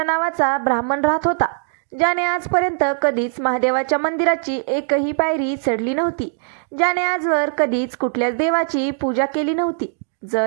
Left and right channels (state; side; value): silent; left; digital silence